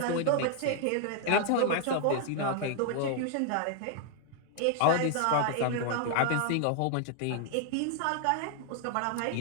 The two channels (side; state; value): both; different; correlation 0.00